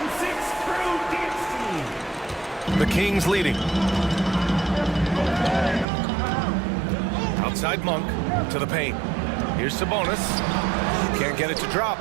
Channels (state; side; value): drops out; left; at 5.9 s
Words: The Kings leading. Outside Monk to the paint. Here's Sabonis. Can't get it to drop.